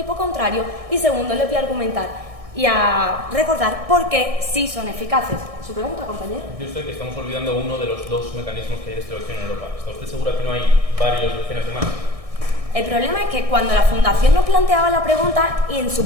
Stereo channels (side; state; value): left; late; 1.6 ms